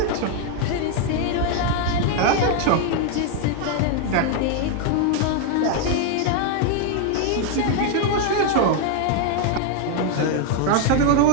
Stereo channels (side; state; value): both; different; correlation 0.01